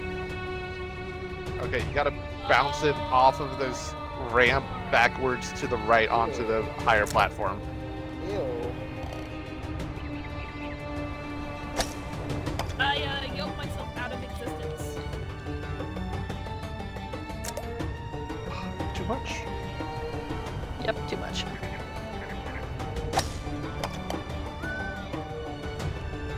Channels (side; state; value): both; identical; correlation 1.00